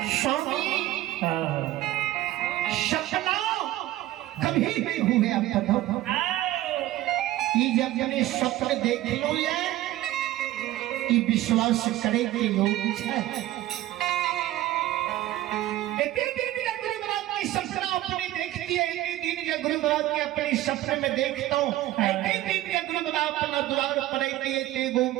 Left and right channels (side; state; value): left; quieter; 15.2 dB